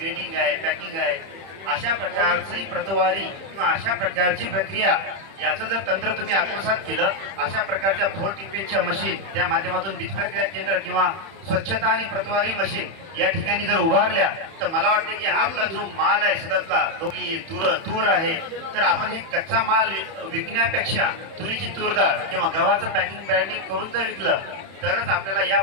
आहे, पॅकिंग आहे, अशा प्रकारची प्रतवारी किंवा अशा प्रकारची प्रक्रिया याचं जर तंत्र तुम्ही आत्मसात केलं, अशा प्रकारच्या 4 टीपीच्या मशीन त्या माध्यमातून बीज प्रक्रिया केंद्र किंवा स्वच्छता आणि प्रतवारी मशीन या ठिकाणी जर उभारल्या, तर मला वाटतं की आपला जो माल आहे शेतातला, तो की तूर आहे, तर आपण हे कच्चा माल विकण्यापेक्षा तुरीची तूरडाळ किंवा गव्हाचं पॅकिंग ब्रँडिंग करून जर विकलं, तरच आपल्याला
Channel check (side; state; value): left; late; 31 ms